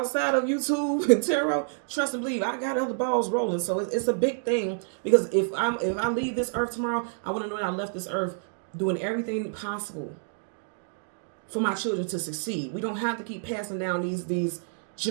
of YouTube and tarot, trust and believe, I got other balls rolling. So it's a big thing, because if I leave this earth tomorrow, I want to know that I left this earth doing everything possible for my children to succeed. We don't have to keep passing down these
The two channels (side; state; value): left; silent; digital silence